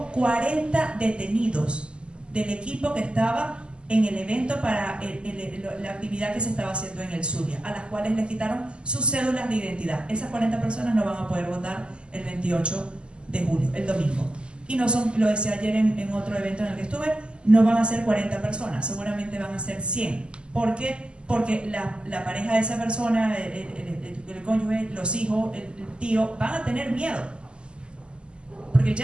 40 detenidos del equipo que estaba en el evento para la actividad que se estaba haciendo en el Zulia, a las cuales les quitaron sus cédulas de identidad. Esas 40 personas no van a poder votar el 28 de julio, el domingo. Y no son, lo decía ayer en otro evento en el que estuve, no van a ser 40 personas, seguramente van a ser 100. ¿Por qué? Porque la pareja de esa persona, el el cónyuge, los hijos, el tío, van a tener miedo, porque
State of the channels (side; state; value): left; late; 0.051 ms